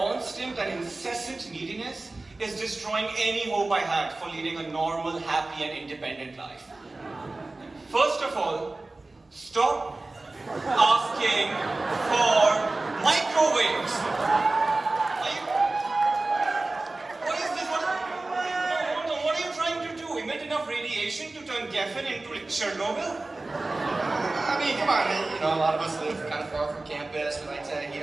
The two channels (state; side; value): quieter; left; 3.1 dB